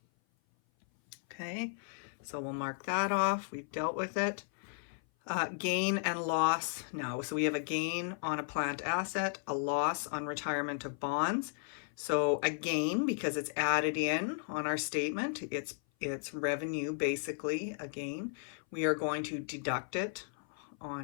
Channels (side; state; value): right; silent; 54 dB below the other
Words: Okay, so we'll mark that off. We've dealt with it. Gain and loss now. So we have a gain on a plant asset, a loss on retirement of bonds. So a gain, because it's added in on our statement, it's revenue, basically, a gain. We are going to deduct it